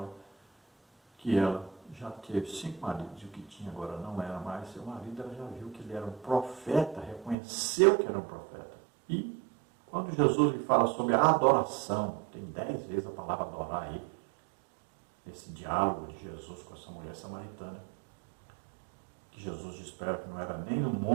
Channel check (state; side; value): drops out; left; at 7.4 s